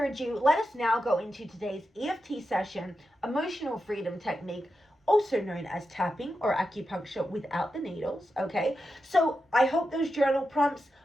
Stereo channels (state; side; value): normal; both; correlation 0.89